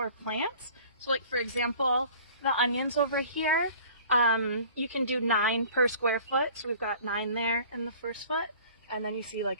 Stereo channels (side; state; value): both; inverted; correlation -0.48